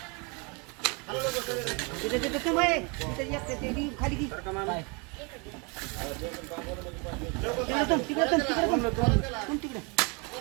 तिथे तिथे तू बाई तिथे एक ते ती खाली की बरं का मामा? तिकडे तुम तिकडे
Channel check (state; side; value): quieter; left; 31.6 dB